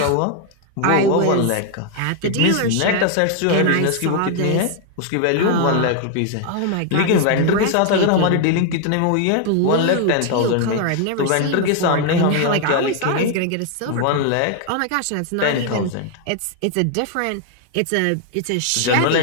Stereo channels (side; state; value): both; different; correlation 0.00